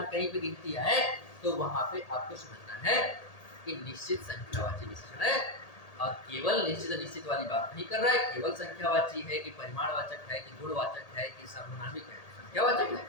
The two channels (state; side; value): late; right; 1.8 ms